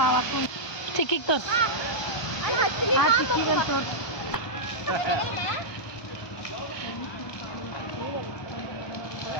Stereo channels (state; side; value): late; right; 1.2 ms